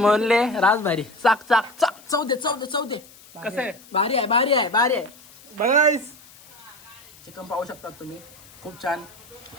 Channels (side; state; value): left; noise; hiss, 23 dB below the sound